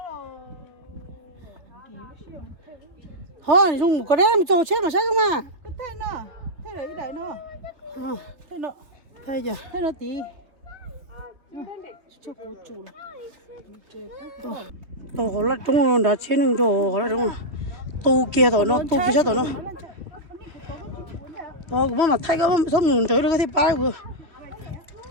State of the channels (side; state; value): left; late; 3.2 ms